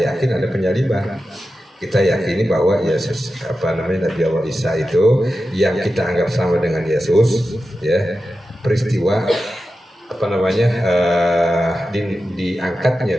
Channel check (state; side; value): normal; both; correlation 0.92